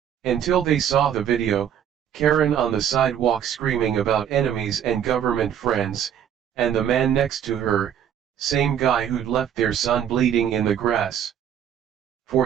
Until they saw the video, Karen on the sidewalk screaming about enemies and government friends, and the man next to her, same guy who'd left their son bleeding in the grass.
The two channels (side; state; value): left; quieter; 9.4 dB